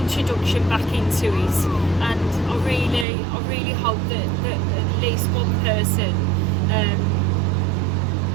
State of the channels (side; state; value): left; drops out; at 3.1 s